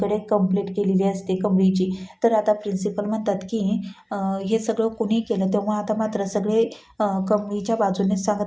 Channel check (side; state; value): both; identical; correlation 1.00